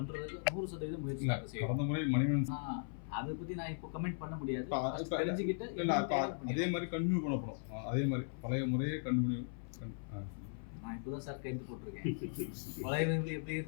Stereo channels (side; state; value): right; silent; 52 dB below the other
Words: 100% முயற்சி செய்யும். கடந்த முறை மணிவன் அதை பற்றி நான் இப்போ கமெண்ட் பண்ண முடியாது. தெரிஞ்சுக்கிட்டு அதே மாதிரி கண்டினியூ பண்ணப்படும். அதே மாதிரி பழைய முறையே கண்டினியூ. நான் இப்போ தான் சார் கைது போட்டிருக்கேன். பழைய எப்படி